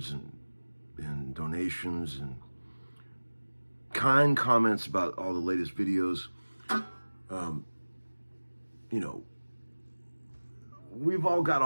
and donations and kind comments about all the latest videos. We've all got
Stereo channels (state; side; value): inverted; both; correlation -1.00